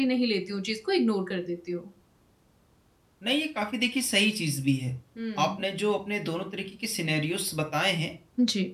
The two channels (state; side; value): identical; both; correlation 1.00